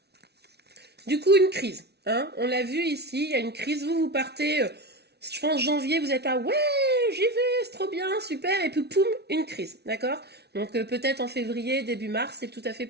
du coup, une crise. Hein, on l'a vu ici, il y a une crise. Vous partez, je pense, janvier, vous êtes là, ouais, j'y vais, c'est trop bien, super. Et puis, poum, une crise, d'accord? Donc, peut-être en février, début mars, c'est tout à fait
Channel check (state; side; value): late; left; 0.49 ms